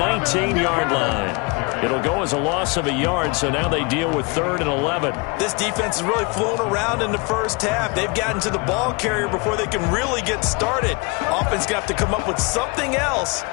line. It'll go as a loss of a yard, so now they deal with 3rd and 11. This defense is really flown around in the first half. They've gotten to the ball carrier before they can really get started. Offense got to come up with something else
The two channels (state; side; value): quieter; right; 29.2 dB